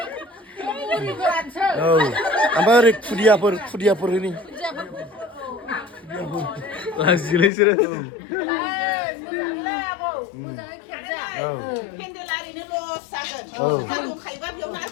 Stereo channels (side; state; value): right; drops out; at 7.5 s